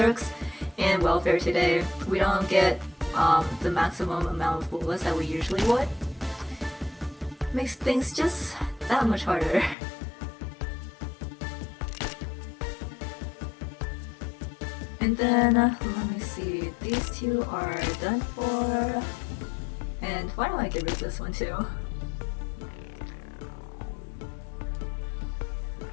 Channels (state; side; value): drops out; right; at 9.8 s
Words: in welfare today, we don't get the maximum amount of bullets that we usually would. Makes things just that much harder. And then, let me see, these two are done for. And why don't I get rid of this one too?